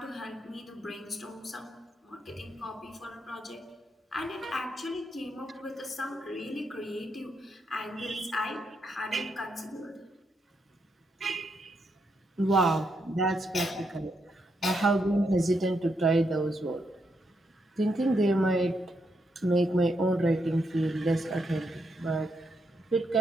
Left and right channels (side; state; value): both; normal; correlation 0.80